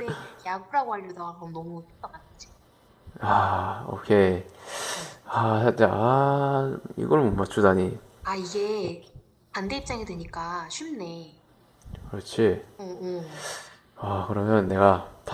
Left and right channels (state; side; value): identical; both; correlation 1.00